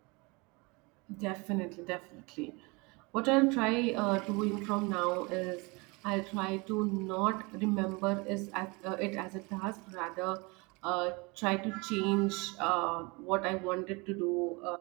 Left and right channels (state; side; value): quieter; left; 27.5 dB